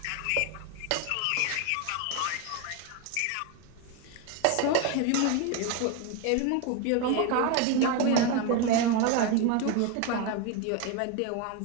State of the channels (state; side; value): different; both; correlation 0.02